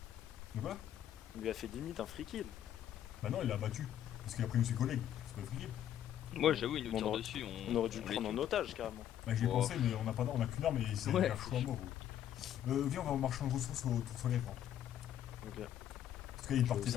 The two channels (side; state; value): right; quieter; 10.8 dB